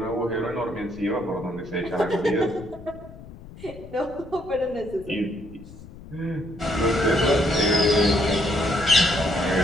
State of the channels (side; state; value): left; noise; rumble, 17 dB below the sound